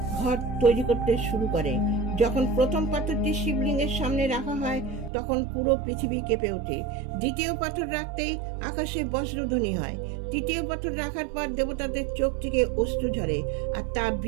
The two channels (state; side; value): drops out; left; at 5.1 s